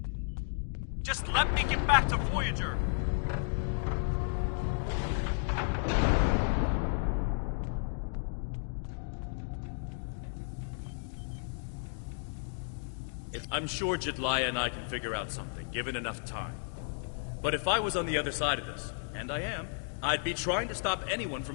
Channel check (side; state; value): right; silent; digital silence